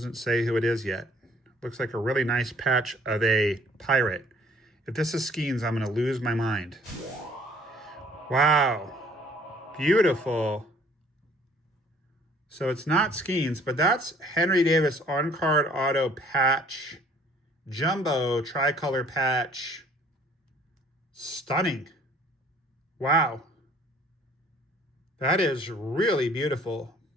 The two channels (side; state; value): both; normal; correlation 0.57